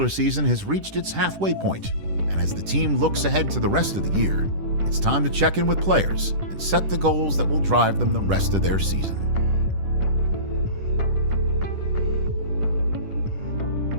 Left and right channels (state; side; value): late; left; 10 ms